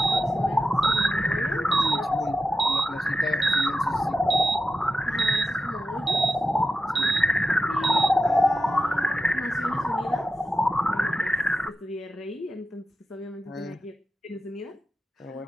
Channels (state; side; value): normal; both; correlation 0.90